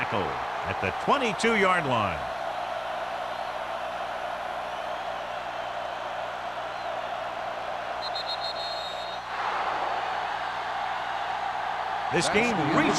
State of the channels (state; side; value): identical; both; correlation 1.00